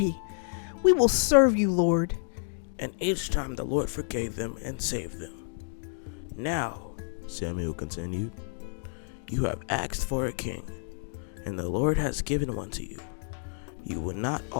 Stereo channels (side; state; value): right; silent; digital silence